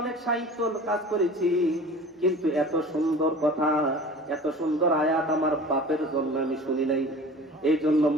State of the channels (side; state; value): both; normal; correlation 0.40